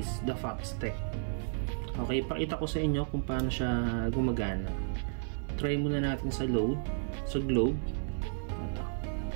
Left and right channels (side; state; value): left; silent; digital silence